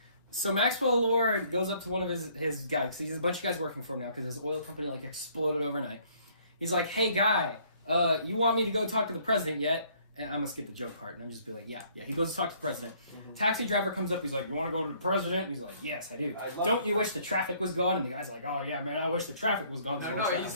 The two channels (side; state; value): both; inverted; correlation -0.62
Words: So Maxwell Lord goes up to one of his guys, because he has a bunch of guys working for him now, because his oil company like exploded overnight. He's like, hey guy, you want me to go talk to the president yet? And I'm gonna skip the joke part, and I'm just be like, yeah. He goes to talk to the president. Mhm. Taxi driver comes up, he's like, you want to go to the president? And he's like, yes, I do. I love Don't it. you wish the traffic was gone? And the guy's like, oh yeah, man, I wish the traffic was gone. No, he